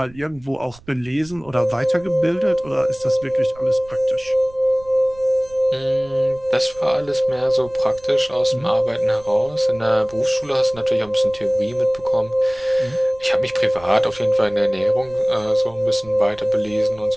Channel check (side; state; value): right; noise; rumble, 23 dB below the sound